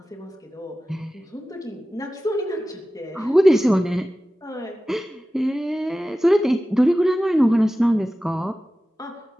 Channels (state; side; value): normal; both; correlation 0.95